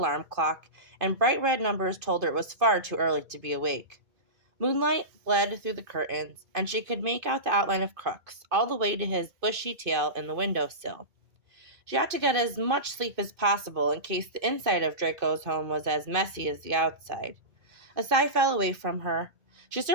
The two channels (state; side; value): late; left; 2.5 ms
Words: clock, and bright red numbers told her it was far too early to be awake. Moonlight bled through the curtains, and she could make out the outline of Crooks, all the way to his bushy tail in the window-sill. She ought to get as much sleep as possible in case the inside of Draco's home was as messy as the outside. A sigh fell away from her. She